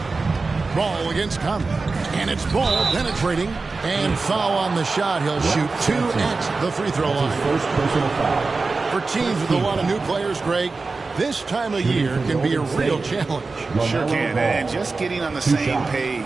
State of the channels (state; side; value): quieter; left; 3.9 dB